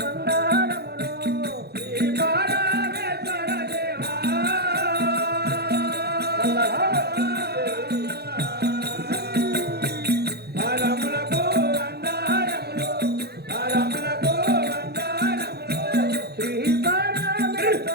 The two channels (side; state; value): left; late; 0.47 ms